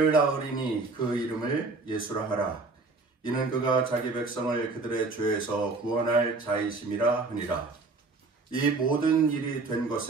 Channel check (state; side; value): quieter; left; 3.7 dB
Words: 낳으리니 그 이름을 예수라 하라. 이는 그가 자기 백성을 그들의 죄에서 구원할 자이심이라 하니라. 이 모든 일이 된